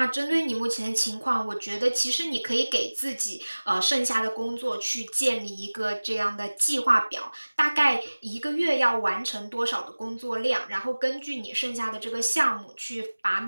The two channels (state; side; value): inverted; both; correlation -1.00